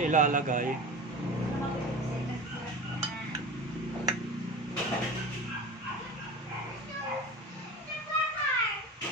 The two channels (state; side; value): normal; both; correlation 0.32